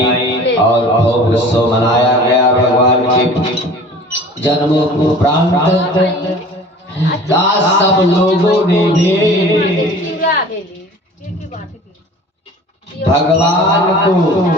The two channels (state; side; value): normal; both; correlation 0.44